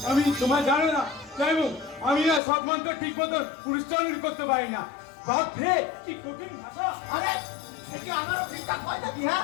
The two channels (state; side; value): drops out; right; at 2.4 s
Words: আমি তোমার জানো না যাইব, আমি না সব মন্ত্র ঠিক মতো উচ্চারণ করতে পারি না। বাপ রে কি কঠিন ভাষা। আরে কি আমারও ঠিকঠাক হয় না?